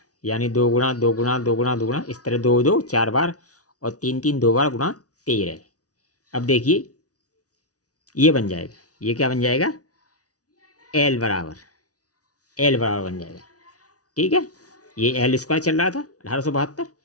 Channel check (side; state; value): right; late; 0.67 ms